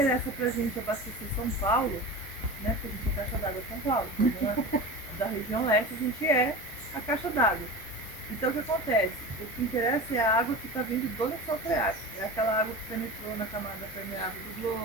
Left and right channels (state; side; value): normal; both; correlation 0.30